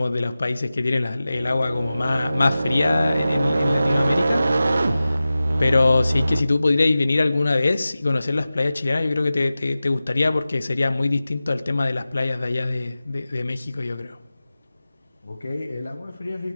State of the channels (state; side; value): inverted; both; correlation -0.95